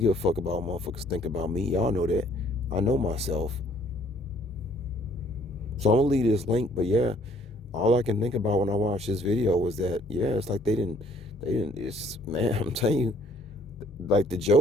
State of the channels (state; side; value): normal; both; correlation 0.61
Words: a fuck about what motherfuckers think about me. Y'all know that. I know myself. So I'm gonna leave this link, but yeah, all I can think about when I watched this video was that, yeah, it's like it's, man, I'm telling you, like the